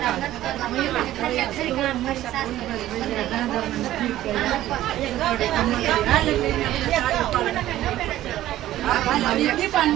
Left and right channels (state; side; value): quieter; left; 14.0 dB